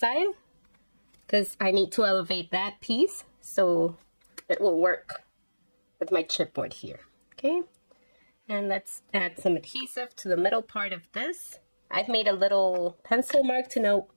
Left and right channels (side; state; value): both; inverted; correlation -1.00